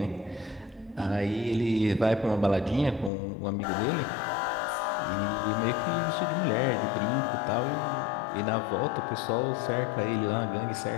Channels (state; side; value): drops out; right; at 3.1 s